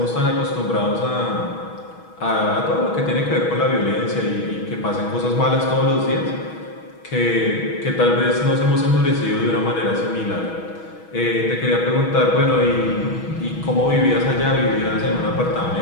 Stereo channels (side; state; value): right; late; 6.2 ms